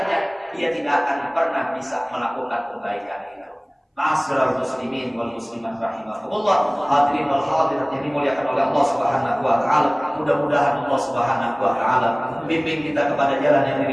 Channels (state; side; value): identical; both; correlation 1.00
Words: dia tidak akan pernah bisa melakukan kebaikan itu. Ma'asyiral muslimin wal muslimat rahimakumullah, hadirin wal hadirat yang dimuliakan oleh Allah Subhanahu wa taala. Mudah-mudahan Allah Subhanahu wa taala bimbing kita kepada jalan yang